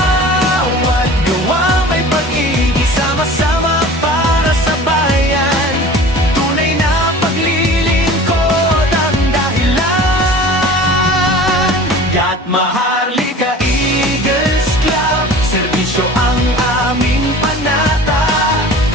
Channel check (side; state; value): both; normal; correlation 0.41